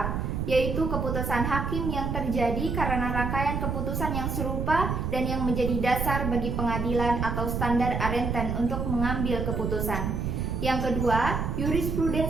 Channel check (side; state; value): right; noise; rumble, 1 dB below the sound